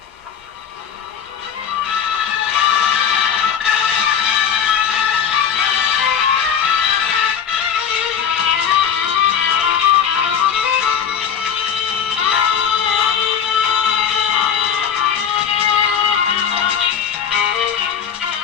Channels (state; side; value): quieter; right; 7.9 dB